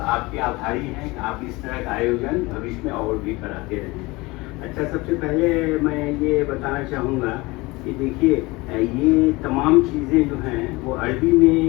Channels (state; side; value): quieter; right; 22.8 dB